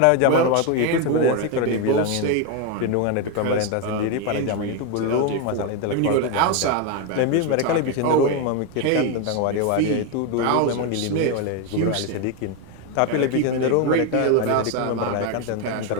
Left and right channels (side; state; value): both; different; correlation 0.02